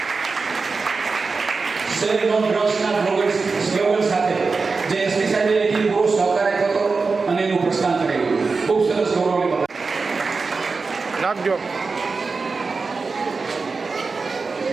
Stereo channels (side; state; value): left; quieter; 4.4 dB